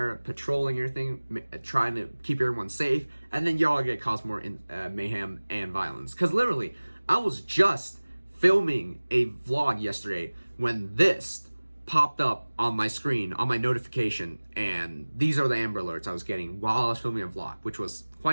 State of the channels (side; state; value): both; inverted; correlation -1.00